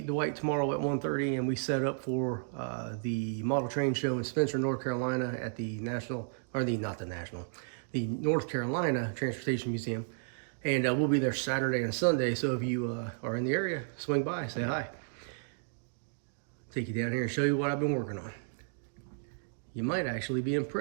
Dwight tomorrow at 1:30, and we set up for the model train show in Spencer, North Carolina at the National, or the not the National, the North Carolina Transportation Museum. And we'll be there Saturday and Sunday. So if you are in the area, swing by, say hi. Take you down here and show you what I've been working on. You might actually be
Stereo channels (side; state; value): left; silent; digital silence